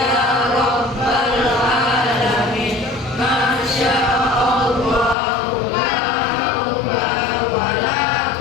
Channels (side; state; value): right; drops out; at 5.2 s